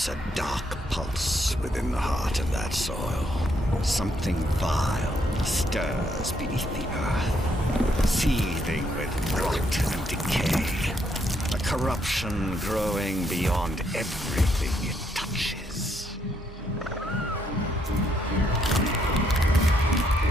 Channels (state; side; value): normal; both; correlation 0.74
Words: a dark pulse within the heart of that soil. Something vile stirs beneath the earth, seething with rot and decay. A corruption growing beyond everything it touches.